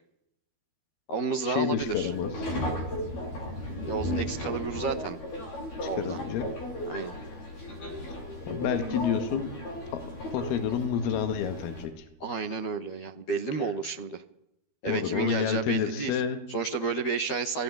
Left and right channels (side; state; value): right; late; 12 ms